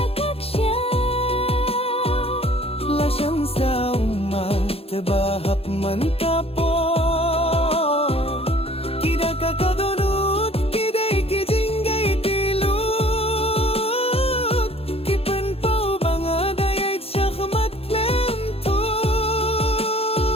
siya Lasyang sa umat bahap man kapo Kida ka kadunut kiday kijinggay tilut Kipan pao banga dayay siya kamatlem to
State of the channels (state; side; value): late; right; 0.28 ms